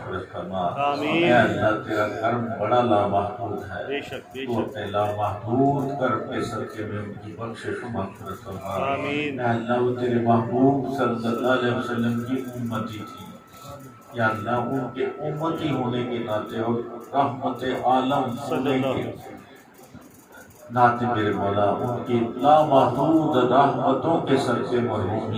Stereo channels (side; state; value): both; identical; correlation 1.00